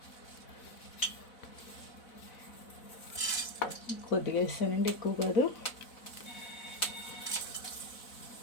కొద్దిగా వేస్తానండి, ఎక్కువ కాదు.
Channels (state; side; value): late; right; 4.0 ms